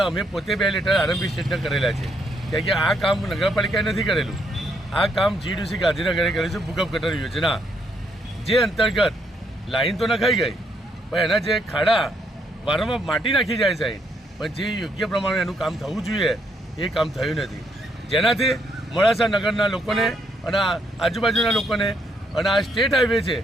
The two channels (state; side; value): normal; both; correlation 0.73